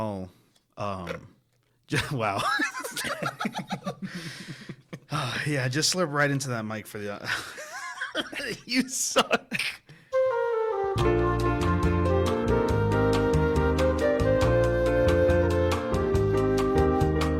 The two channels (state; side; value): identical; both; correlation 1.00